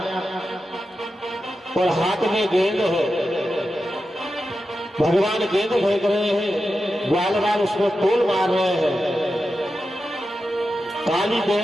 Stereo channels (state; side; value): normal; both; correlation 0.90